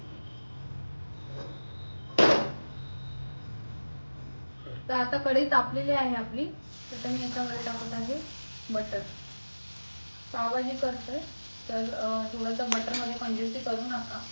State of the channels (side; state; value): both; inverted; correlation -1.00